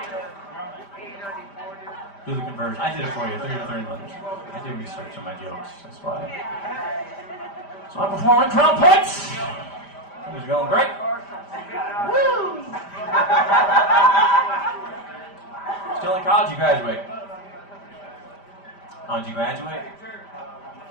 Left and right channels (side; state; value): right; late; 5.0 ms